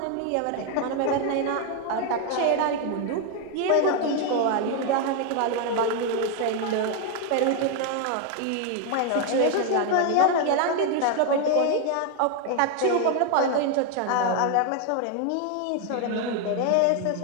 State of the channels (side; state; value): both; different; correlation 0.01